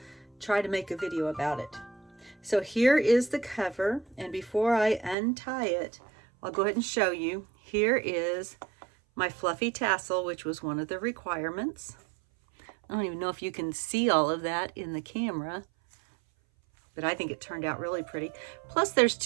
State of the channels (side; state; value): left; drops out; at 5.2 s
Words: try to make a video about it. So here is the cover, and before I untie it, I'll go ahead and show you. Here is my fluffy tassel, which was one of the requirements. I don't even know if you can see all of that in the camera, but I think it turned out really pretty. Plus there's